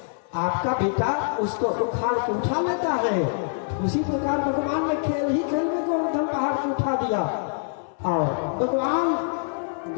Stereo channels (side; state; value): right; silent; digital silence